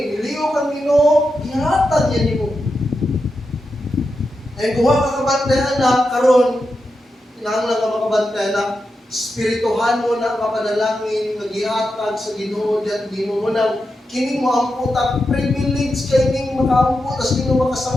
nilihok ang Ginoo, nihatag niya nimo. And kung ka kabantay, anak, karon, kinahanglan ka makabantay, anak, spirituhan mo na kapanalangin, mag-ihatag sa Ginoo, diyan Ginoo mo na, kini mo ang puta, privilege kay ning makaampo, tas Ginoo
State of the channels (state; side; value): normal; both; correlation 0.88